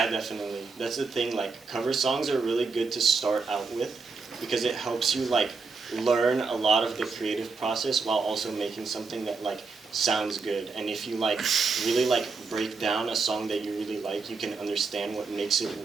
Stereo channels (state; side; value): quieter; left; 4.5 dB